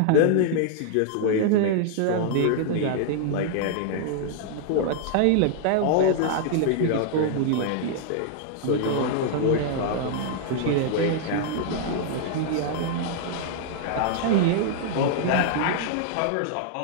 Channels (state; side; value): different; both; correlation 0.00